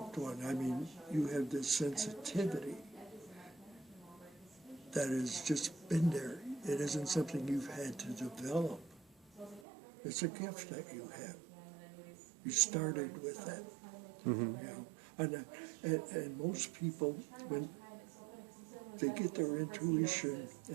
one. I mean, you have this sensitivity that has just been there. It isn't something you've had to develop. It's a gift that you have. You started with that. Mm-hmm. You know? And most people, when they get their intuition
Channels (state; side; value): drops out; left; at 9.7 s